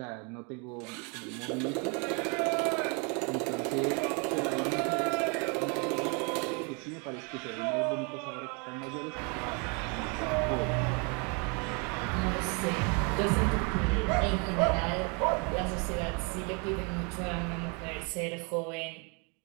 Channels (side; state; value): left; quieter; 33.8 dB